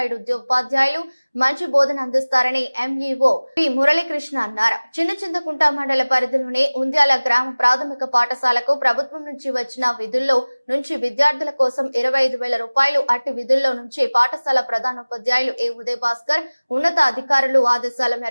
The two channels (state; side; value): inverted; both; correlation -1.00